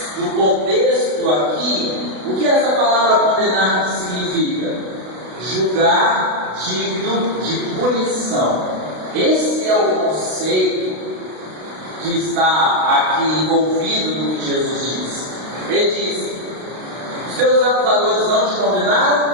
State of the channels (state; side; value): late; left; 32 ms